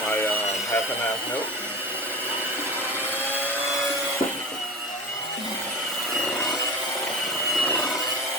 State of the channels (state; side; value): normal; both; correlation 0.29